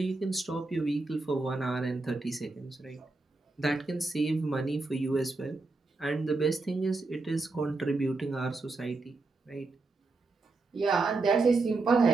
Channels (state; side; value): quieter; left; 3.6 dB